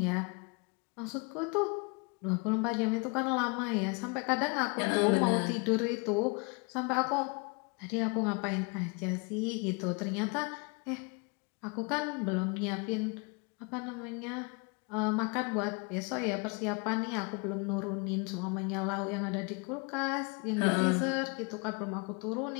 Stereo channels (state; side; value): quieter; right; 31.6 dB